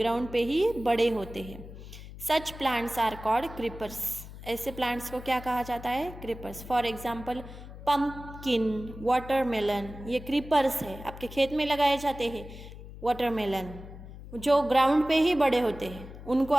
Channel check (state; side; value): noise; left; hum, 14 dB below the sound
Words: पे ही बड़े होते हैं. Such plants are called creepers. ऐसे plants को क्या कहा जाता है? creepers. For example, pumpkin, watermelon, ये creepers है, आपके खेत में लगाए जाते हैं. watermelon जो ग्राउंड पे ही बड़े होते हैं, उनको